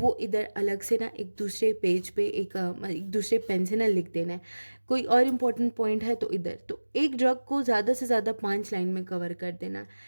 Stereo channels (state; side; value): inverted; both; correlation -1.00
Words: इधर अलग से ना एक दूसरे पेज पे एक दूसरे पेन से ना लिख देना है। कोई और इम्पोर्टेंट पॉइंट है तो इधर, तो एक ड्रग को ज़्यादा से ज़्यादा 5 लाइन में कवर कर देना।